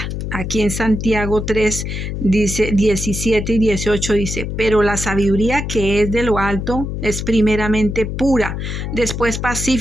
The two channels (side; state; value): left; noise; hum, 4 dB below the sound